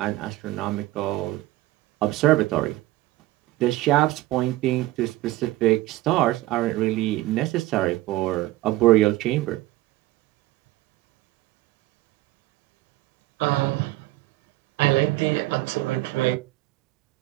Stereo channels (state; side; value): quieter; left; 17.4 dB